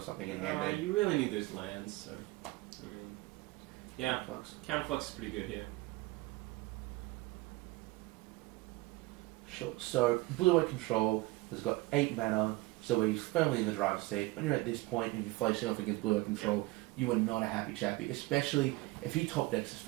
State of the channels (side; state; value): left; quieter; 20.9 dB